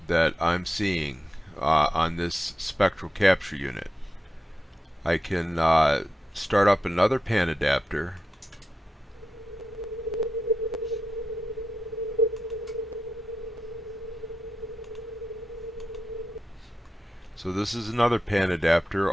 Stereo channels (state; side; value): normal; both; correlation 0.89